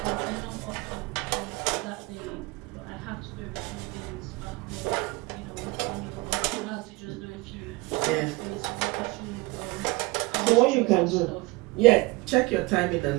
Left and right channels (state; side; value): quieter; left; 23.5 dB